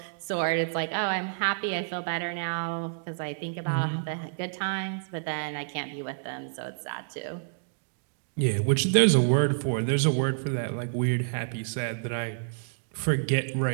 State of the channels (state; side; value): silent; left; digital silence